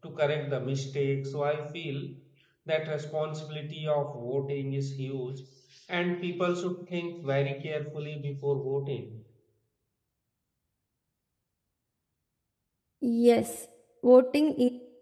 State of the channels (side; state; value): both; identical; correlation 1.00